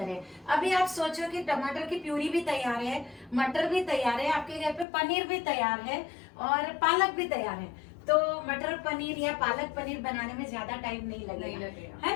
है। अभी आप सोचो कि टमाटर की प्यूरी भी तैयार है, मटर भी तैयार है, आपके घर पे पनीर भी तैयार है और पालक भी तैयार है, तो मटर पनीर या पालक पनीर बनाने में ज्यादा टाइम नहीं लगेगा,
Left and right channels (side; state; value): right; drops out; at 4.9 s